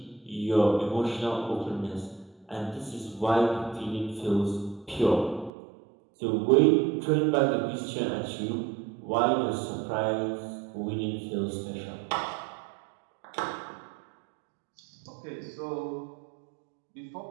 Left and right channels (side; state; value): left; drops out; at 5.5 s